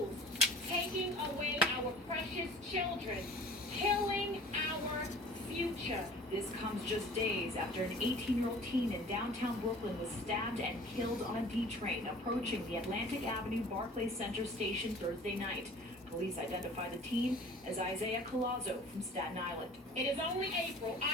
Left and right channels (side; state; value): both; normal; correlation 0.46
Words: taking away our precious children, killing our future. This comes just days after an 18-year-old teen in downtown Brooklyn was stabbed and killed on a D train approaching the Atlantic Avenue Barclays Center station Thursday night. Police identified the teen as Isaiah Collazo from Staten Island. It is only April.